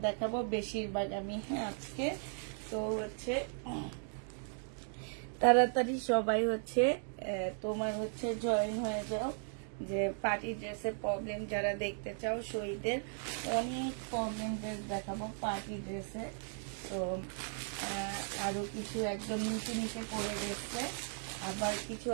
দেখাবো বেশিরভাগ আমি, হ্যাঁ আজকে। তো হচ্ছে তাড়াতাড়ি সবাই হচ্ছে তোমার হচ্ছে জয়েন হয়ে যাও, যে পার্টি ড্রেসের প্রবলেম যারা দেখতে চাও। শহীদের অনেক প্রবলেম ড্রেস দেখাবো পার্টি ড্রেসে। তো আরো কিছু একদম নিচে নিচে পড়ে গেছে, আবার কিছু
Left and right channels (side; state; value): left; silent; 53 dB below the other